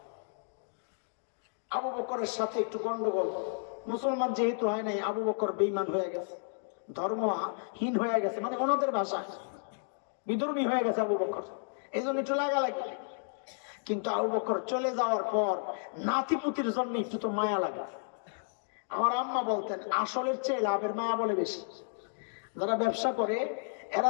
আবু বকরের সাথে একটু গন্ডগোল, মুসলমান যেহেতু হয় নাই, আবু বকর বেঈমান হয়ে গেছে, ধর্মহীন হয়ে গেছে, মানে ওনাদের ভাষা বিধর্মী হয়ে গেছে আবু বকর, এই জন্য একটু লাগালাগি। কিন্তু আবু বকর চলে যাওয়ার পর নাতিপুতির জন্য একটু তো মায়া লাগে। আমার আম্মা বলতেন, আসলের চেয়ে লাভের মায়া বলে বেশি। যারা ব্যবসা করে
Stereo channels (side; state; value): right; silent; digital silence